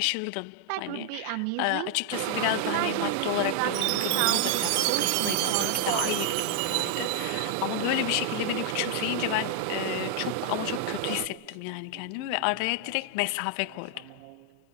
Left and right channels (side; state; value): both; different; correlation 0.00